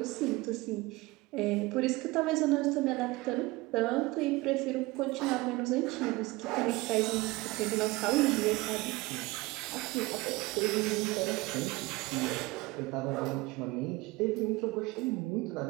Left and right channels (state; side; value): quieter; left; 21.9 dB